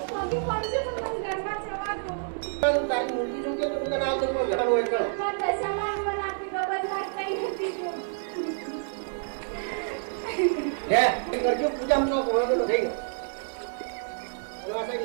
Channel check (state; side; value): silent; left; 57 dB below the other